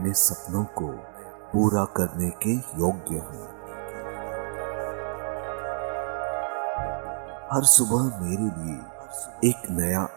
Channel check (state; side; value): silent; left; digital silence